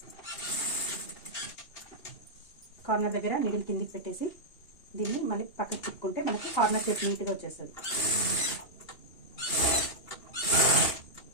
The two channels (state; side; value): late; right; 2.8 ms